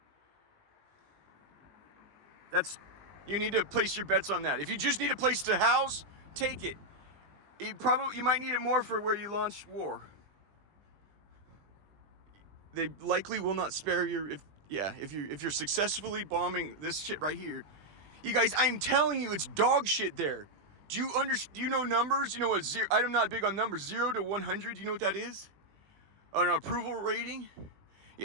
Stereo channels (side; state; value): left; late; 20 ms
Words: You need to place your bets on that. If you just need a place to house, take it. You might need it more for where you launch war. They likely will not spare if you're successfully bombing this shit right here. You guys, I'm telling you, it's dog shit there. Do you know numbers? You know what I'm not big on numbers. 0 to 100, do you know what that is? An approval rating?